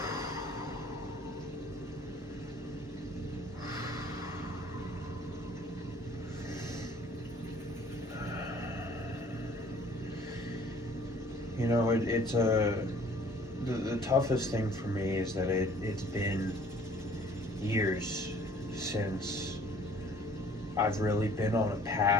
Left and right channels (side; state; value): both; normal; correlation 0.54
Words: You know, it's the toughest thing for me is that it's been years since I've really been on a